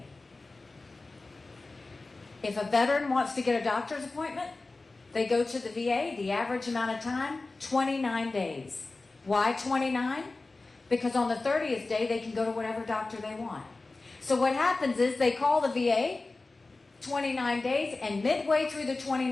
If a veteran wants to get a doctor's appointment, they go to the VA. The average amount of time, 29 days. Why 29? Because on the 30th day, they can go to whatever doctor they want. So what happens is they call the VA, 29 days, and midway through the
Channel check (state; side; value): quieter; right; 3.4 dB